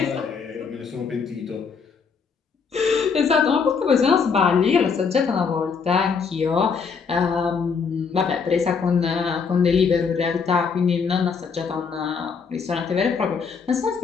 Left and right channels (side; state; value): right; quieter; 5.7 dB